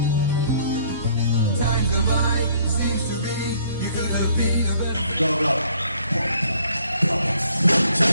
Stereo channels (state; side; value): inverted; both; correlation -0.61